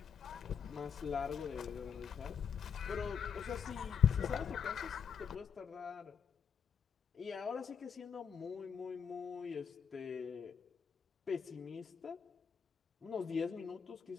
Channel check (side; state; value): right; quieter; 7.0 dB